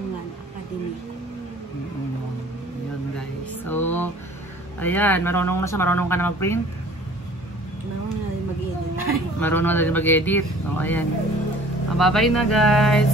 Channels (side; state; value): both; normal; correlation 0.50